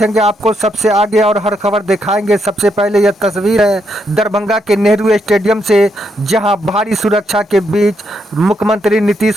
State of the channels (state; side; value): normal; both; correlation 0.78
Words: आपको सबसे आगे और हर खबर दिखाएंगे। सबसे पहले यह तस्वीर है दरभंगा के नेहरू स्टेडियम से, जहां भारी सुरक्षा के बीच मुख्यमंत्री